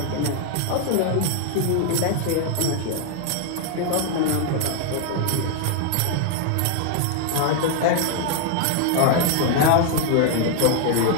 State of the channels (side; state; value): both; different; correlation 0.00